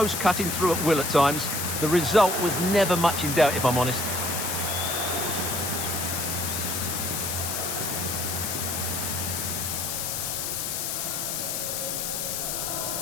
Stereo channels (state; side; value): noise; left; hiss, 2 dB below the sound